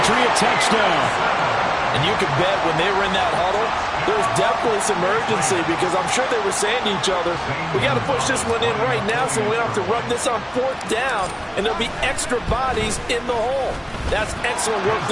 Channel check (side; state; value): both; identical; correlation 1.00